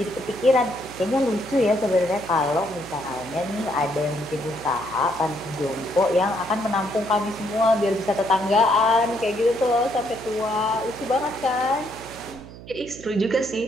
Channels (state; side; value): noise; right; hum, 16 dB below the sound